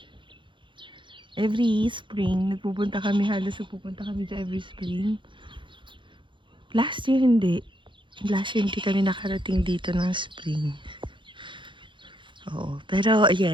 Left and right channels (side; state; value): left; late; 0.23 ms